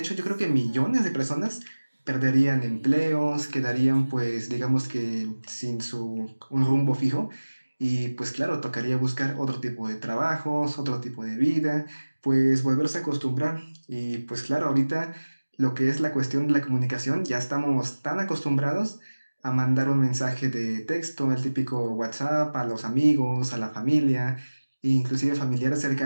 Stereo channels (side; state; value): both; inverted; correlation -1.00